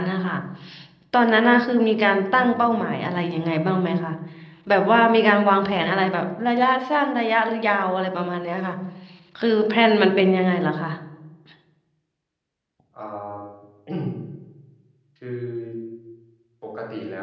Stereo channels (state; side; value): identical; both; correlation 1.00